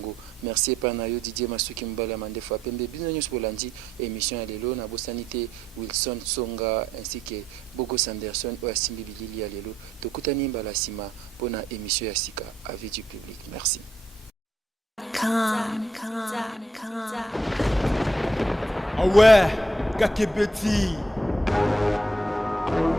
Merci Panayo Didier Masuki Mbala Mandefa Pembe, Binonyos Bolandi, émission à l'élo, Nabo Sanité, Wilson Songa, ainsi que Bogo Sanderson, Oasimbi Bilili à l'élo, Tokutani Mbalasima, pour la émission Yassika, avis du public. Merci. Ah ouais, Kakebeti.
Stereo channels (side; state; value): both; normal; correlation 0.74